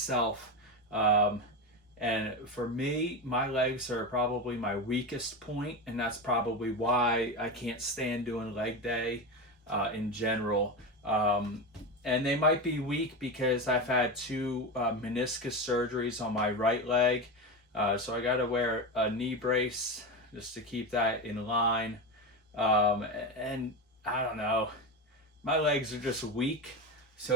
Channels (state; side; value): normal; both; correlation 0.18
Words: And for me, my legs are probably my weakest point, and that's probably why I can't stand doing leg day in general. And they might be weak because I've had two meniscus surgeries on my right leg. So I got to wear a knee brace just to keep that in line. And I don't know, my legs are just weak.